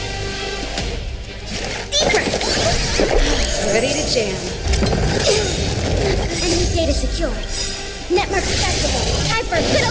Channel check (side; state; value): both; identical; correlation 1.00